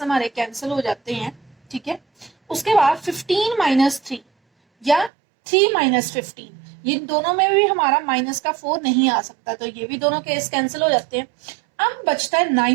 हमारे कैंसिल हो जाते हैं, ठीक है। उसके बाद 15 माइनस 3 या 3 माइनस 15, ये दोनों में भी हमारा माइनस का 4 नहीं आ सकता, तो ये भी दोनों केस कैंसिल हो जाते हैं। अब बचता है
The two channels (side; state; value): left; drops out; at 5.1 s